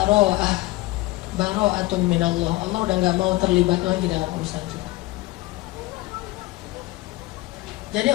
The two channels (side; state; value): right; quieter; 19.5 dB